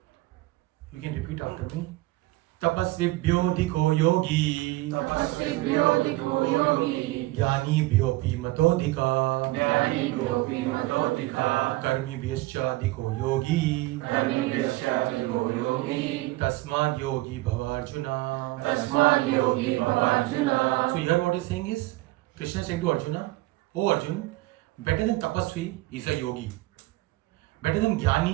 You can repeat after me. Tapasvibhyodhiko yogi Jnanibhyopi matodhika Karmibhyascha yogi Tasmad yogi bhavarjuna. So here what he's saying is, Krishna is saying to Arjuna, oh Arjun, better than tapasvi is a yogi. Better than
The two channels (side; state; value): left; quieter; 19.5 dB